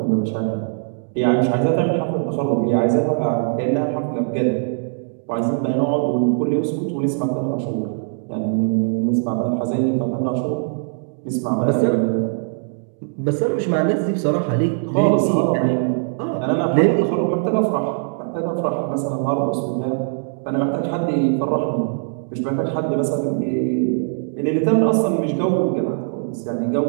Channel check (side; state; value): left; silent; digital silence